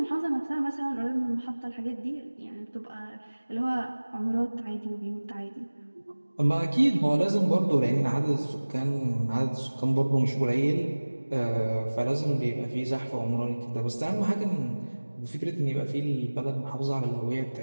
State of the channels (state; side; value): inverted; both; correlation -1.00